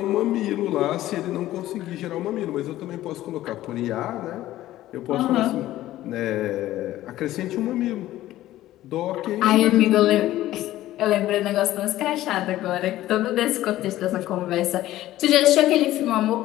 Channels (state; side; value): quieter; right; 14.8 dB